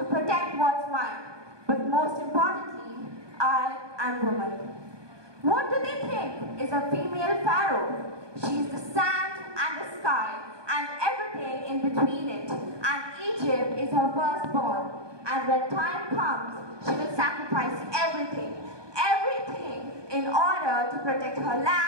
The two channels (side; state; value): left; late; 1.2 ms